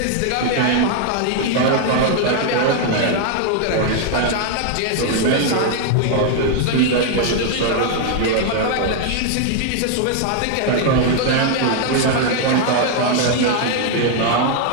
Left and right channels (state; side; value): different; both; correlation 0.00